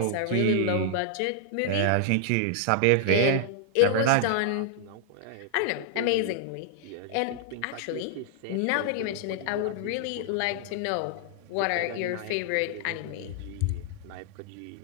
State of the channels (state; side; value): different; both; correlation -0.01